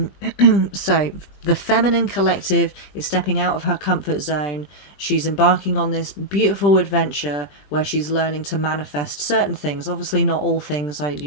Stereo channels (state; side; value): late; right; 20 ms